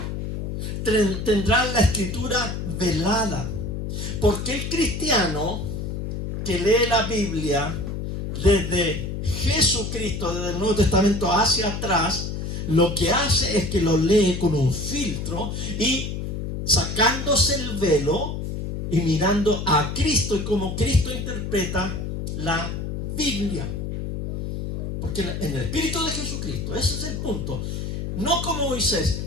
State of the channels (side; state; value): left; noise; hum, 4 dB below the sound